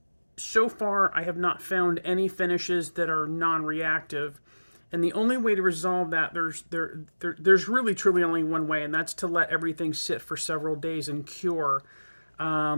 so far, I have not found any finishes that are non-reactive. And the only way to resolve that, there's really truly only one way, and that's to let everything sit for several days and cure.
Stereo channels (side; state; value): both; inverted; correlation -1.00